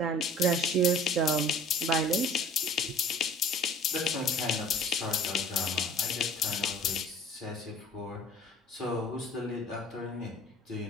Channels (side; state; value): both; normal; correlation 0.48